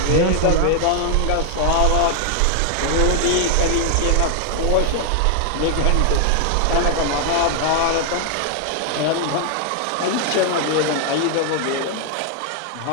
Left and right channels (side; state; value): both; different; correlation 0.00